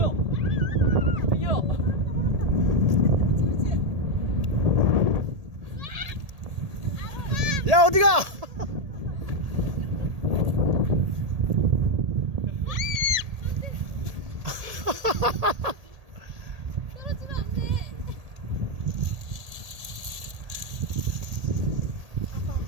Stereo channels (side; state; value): left; late; 1.8 ms